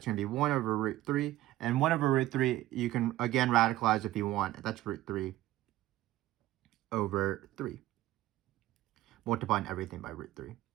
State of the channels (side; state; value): left; quieter; 15.6 dB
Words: going to be 1 over root 3. And 1 over root 3, you can, again, radicalize if you want. That's root 3 over 3. Multiplying everything by root 3.